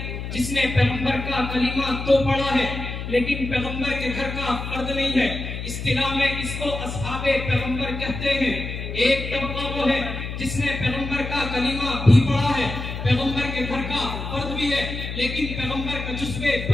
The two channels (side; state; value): left; noise; hum, 6 dB below the sound